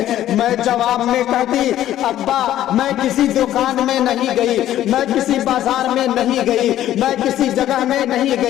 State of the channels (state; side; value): quieter; right; 12.7 dB